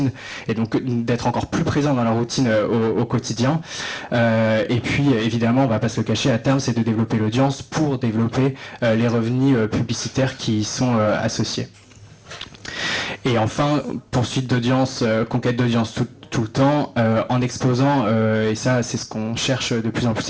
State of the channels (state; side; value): identical; both; correlation 1.00